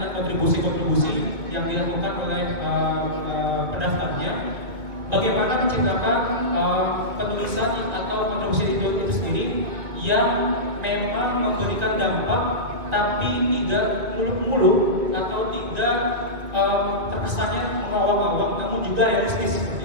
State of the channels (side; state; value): left; late; 2.2 ms